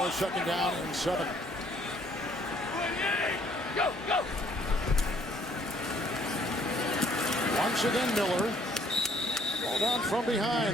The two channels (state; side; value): normal; both; correlation 0.62